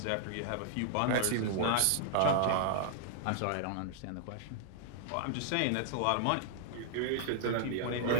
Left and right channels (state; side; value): different; both; correlation -0.01